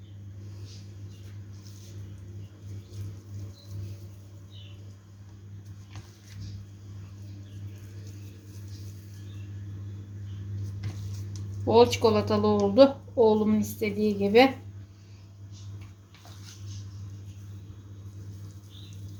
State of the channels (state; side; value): identical; both; correlation 1.00